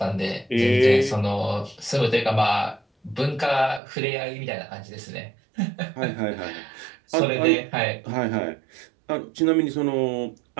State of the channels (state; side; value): drops out; left; at 3.8 s